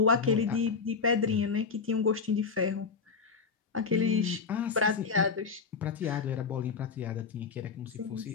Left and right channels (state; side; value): quieter; right; 5.2 dB